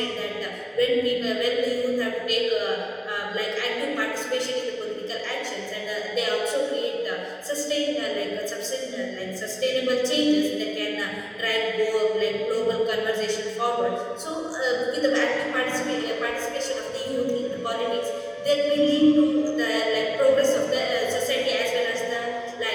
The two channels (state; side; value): identical; both; correlation 1.00